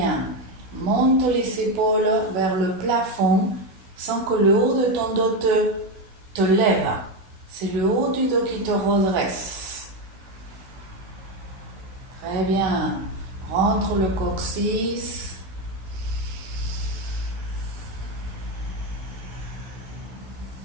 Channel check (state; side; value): late; left; 16 ms